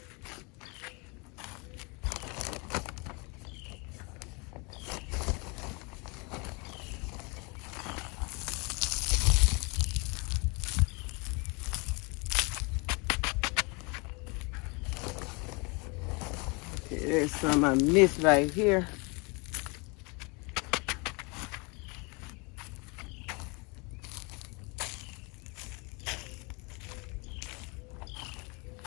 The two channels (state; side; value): quieter; right; 30.0 dB